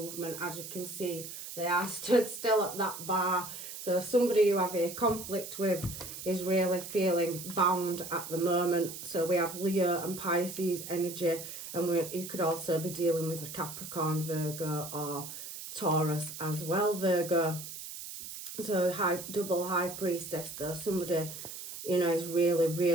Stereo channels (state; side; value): noise; right; hiss, 10 dB below the sound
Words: As you can see, they are stood still at that bar. So somebody you have a conflict with is really feeling bound at the moment. So we have Leo and Pisces energy, and you could also be dealing with a Capricorn, Virgo, or Taurus as well, Virgo. So double High Priestess though, somebody is really,